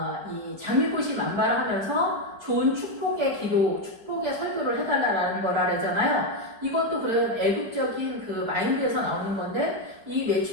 이 장미꽃이 만발하면서 좋은 축복의 기도, 축복의 설교를 해달라는 거라 그러잖아요. 이것도 그런 애국적인 그 마인드에서 나오는 건데 이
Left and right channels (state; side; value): late; left; 4.8 ms